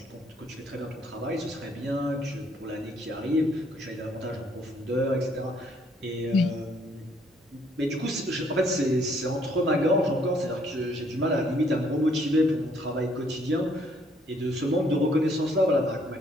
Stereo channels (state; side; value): normal; both; correlation 0.66